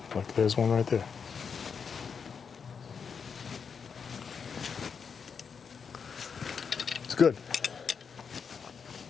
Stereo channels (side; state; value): right; quieter; 6.2 dB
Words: Look, there's one right there. It's good.